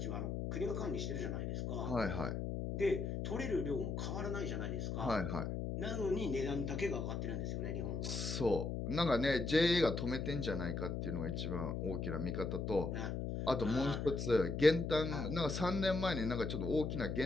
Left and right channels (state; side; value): noise; left; hum, 2 dB below the sound